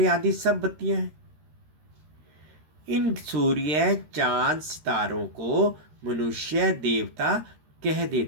आदि सब बत्तियां हैं। इन सूर्य चांद सितारों को मनुष्य देवता कह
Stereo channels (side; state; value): left; late; 13 ms